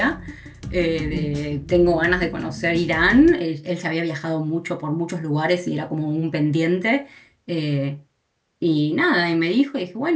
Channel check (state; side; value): identical; both; correlation 1.00